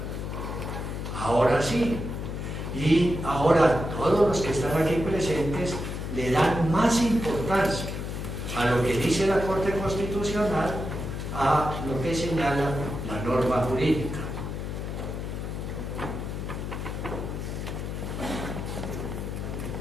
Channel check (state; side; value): noise; left; hum, 5 dB below the sound